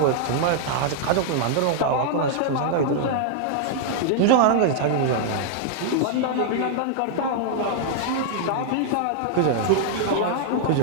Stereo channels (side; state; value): both; different; correlation -0.01